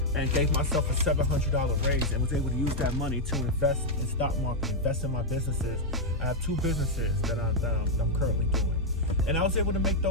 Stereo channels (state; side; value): normal; both; correlation -0.01